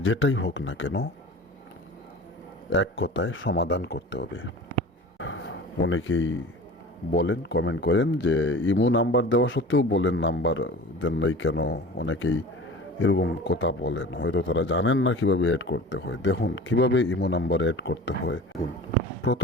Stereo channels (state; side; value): normal; both; correlation 0.38